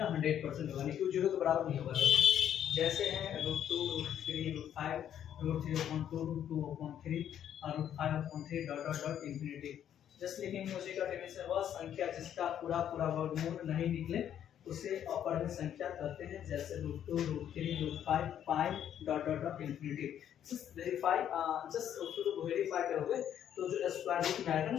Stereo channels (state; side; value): quieter; right; 10.0 dB